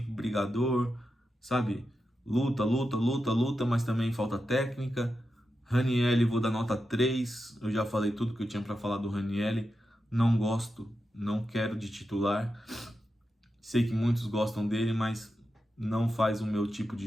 brigador, sabe? Luta, mas também falta técnica. Ranieri, vou dar nota 3, eu já falei tudo que eu tinha para falar do Ranieri, não gosto, não quero de titular, sei que muitos gostam dele, mas não faz o meu tipo de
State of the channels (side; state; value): both; normal; correlation 0.88